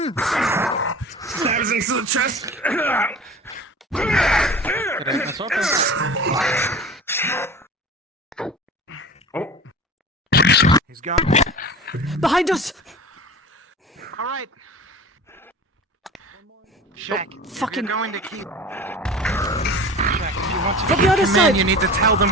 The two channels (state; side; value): normal; both; correlation 0.37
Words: Stabs into the chest. That's open. He's gone. Behind us! All right. Shaq, Fucking- you're going to keep... Shaq, if you want to From keep the other command, side. you need to tell